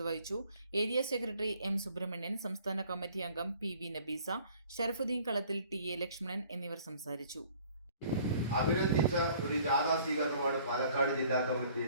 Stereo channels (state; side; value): inverted; both; correlation -0.55